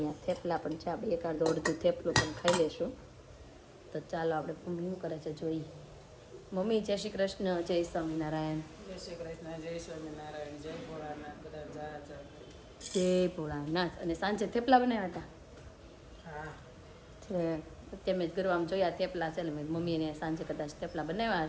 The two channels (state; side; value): identical; both; correlation 1.00